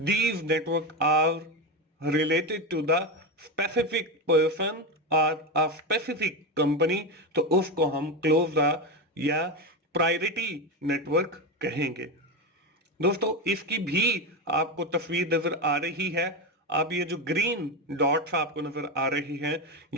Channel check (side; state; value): both; normal; correlation 0.16